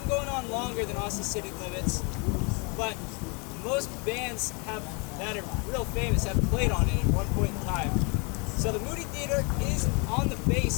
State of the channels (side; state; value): right; quieter; 32.7 dB